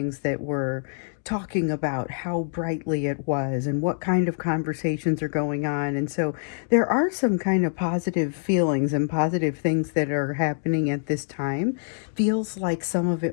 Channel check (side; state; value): right; silent; digital silence